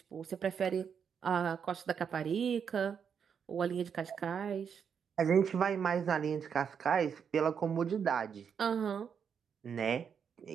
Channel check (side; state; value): left; quieter; 7.2 dB